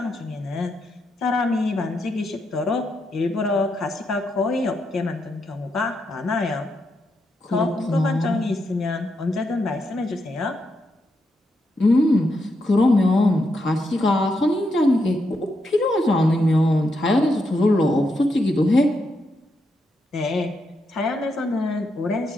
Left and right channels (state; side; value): normal; both; correlation 0.82